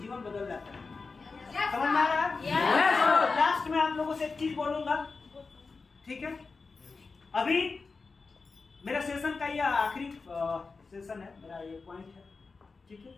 बदल जाता है। समझ में आ रहा है? Yes, sir. लास्ट में आप लोगों से एक चीज बोलूंगा, ठीक है? अभी मेरा सेशन का यह आखिरी सेशन है, मेरा ये पॉइंट है, ठीक है?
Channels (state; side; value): quieter; right; 4.3 dB